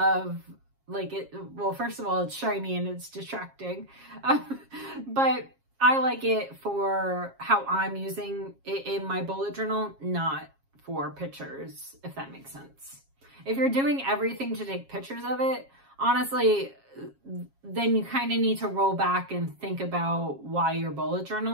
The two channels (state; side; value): late; left; 7.4 ms